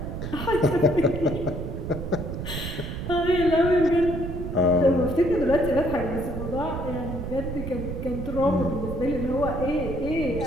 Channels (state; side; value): noise; right; rumble, 6 dB below the sound